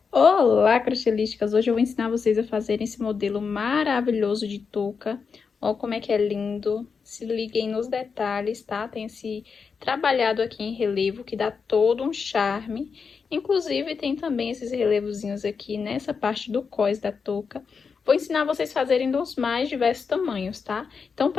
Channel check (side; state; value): right; quieter; 5.6 dB